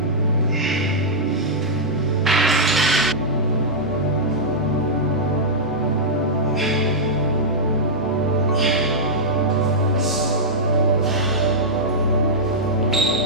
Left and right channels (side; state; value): both; normal; correlation -0.09